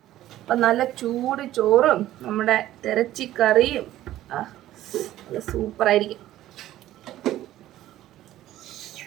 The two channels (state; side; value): quieter; left; 14.0 dB